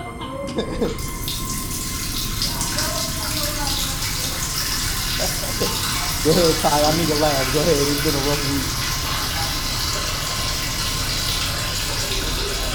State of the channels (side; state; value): both; identical; correlation 1.00